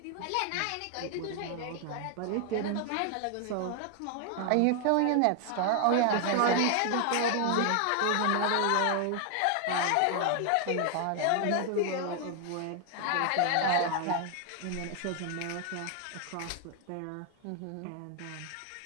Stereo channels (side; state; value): both; different; correlation 0.00